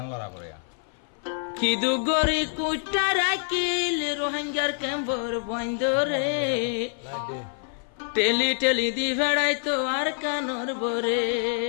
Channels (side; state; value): right; silent; 56 dB below the other